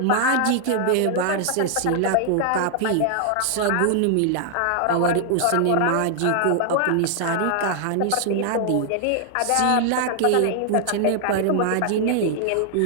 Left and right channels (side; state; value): both; different; correlation 0.00